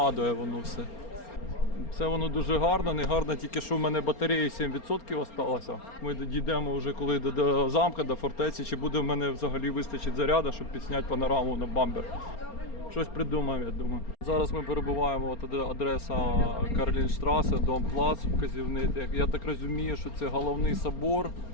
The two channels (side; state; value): right; late; 4.3 ms